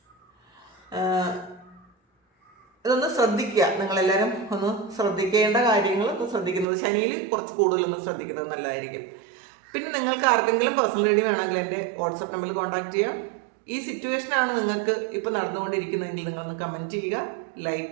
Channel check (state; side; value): drops out; left; at 6.7 s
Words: ഇതൊന്ന് ശ്രദ്ധിക്കുക. നിങ്ങളെല്ലാവരും ഒന്ന് ശ്രദ്ധിക്കേണ്ട കാര്യങ്ങൾ ഒന്ന് ശ്രദ്ധിക്കുന്നത്, ശനിയിൽ കുറച്ച് കൂടുതലൊന്ന് ശ്രദ്ധിക്കുന്നത് നല്ലതായിരിക്കും. പിന്നെ നിങ്ങൾക്ക് ആർക്കെങ്കിലും പേഴ്സണൽ റീഡിംഗ് വേണമെങ്കിൽ എൻ്റെ വാട്സപ്പ് നമ്പറിൽ കോൺടാക്ട് ചെയ്യാം. ഈ സിറ്റുവേഷനാണ് നിങ്ങൾക്ക് ഇപ്പോൾ നടന്നുകൊണ്ടിരിക്കുന്നതെങ്കിൽ നിങ്ങളൊന്ന് കമൻറ്റ് ചെയ്യുക,